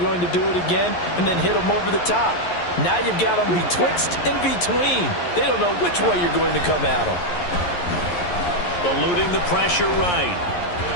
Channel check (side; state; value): right; late; 11 ms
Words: going to do it again, and then hit them over the top. Now you've got them betwixt and between. They don't know which way you're going to come at them. Eluding the pressure right.